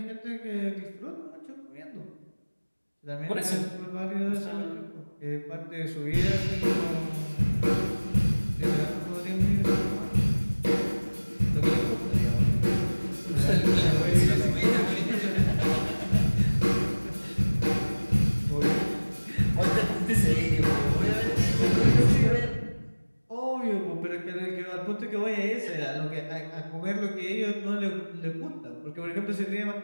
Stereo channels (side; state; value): both; inverted; correlation -1.00